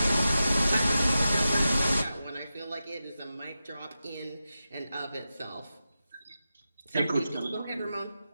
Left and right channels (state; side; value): inverted; both; correlation -0.91